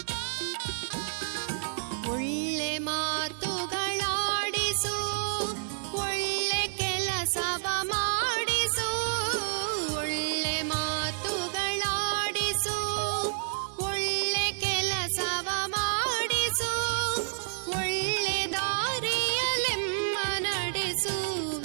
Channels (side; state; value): left; silent; 58 dB below the other